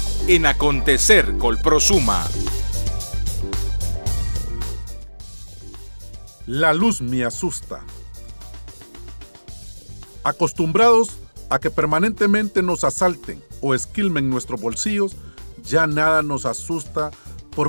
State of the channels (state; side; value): inverted; both; correlation -1.00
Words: en Acontecer Colprosuma. La luz me asusta. Acostumbrados a que permanentemente nos asalten o esquilmen nuestros bolsillos, ya nada nos asusta